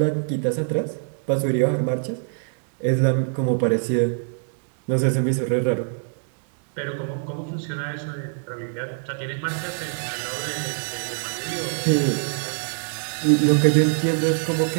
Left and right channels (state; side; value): silent; left; digital silence